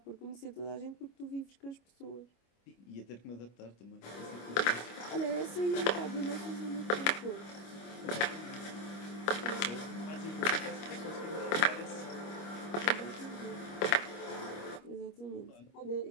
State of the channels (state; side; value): late; right; 25 ms